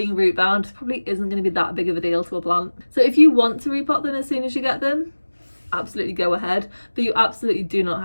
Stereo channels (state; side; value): inverted; both; correlation -1.00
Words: root bound probably isn't going to be that big of a deal to a plant. So if you want to repot them as soon as you get them, absolutely go ahead, but you absolutely do not